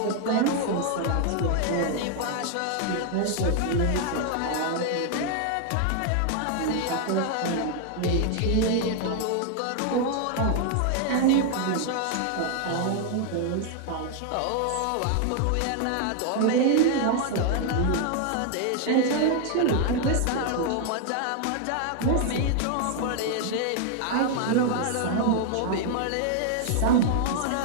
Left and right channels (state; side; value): different; both; correlation 0.00